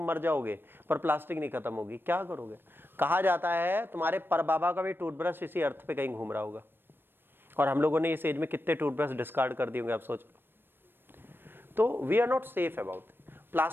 मर जाओगे, पर प्लास्टिक नहीं खत्म होगी। क्या करोगे? कहा जाता है तुम्हारे परबाबा का भी टूथब्रश इसी अर्थ पे कहीं घूम रहा होगा, और हम लोगों ने इस एज में कितने टूथब्रश डिस्कार्ड कर दिए होंगे, आप सोच लो। तो we are not safe about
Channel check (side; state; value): left; late; 0.098 ms